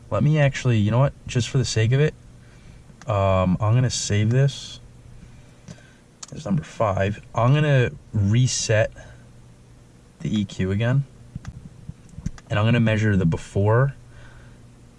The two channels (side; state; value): both; identical; correlation 1.00